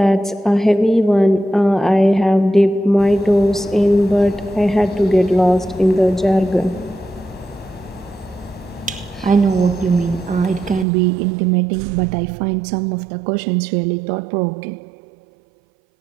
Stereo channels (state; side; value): drops out; left; at 10.9 s